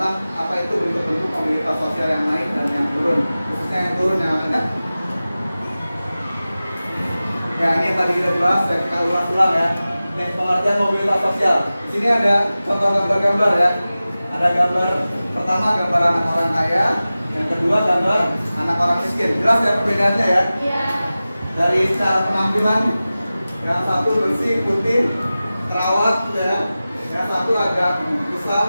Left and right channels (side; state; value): both; inverted; correlation -0.96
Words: apa itu bentuk-bentuk mobilitas sosial yang naik dan yang turun, khususnya yang turun yang ada. Ya, ini yang tadi kita bahas, kita ulang-ulang ya. Nih, pengertian mobilitas sosial. Di sini ada contoh-contoh gambar ya. Ada gambar pertama, gambar anak orang kaya. Yang kedua, gambar anak orang miskin. Jelas ya perbedaannya ya? ya Dari cara penampilan, yang satu bersih, putih, terawat ya. Yang satu agak kusam,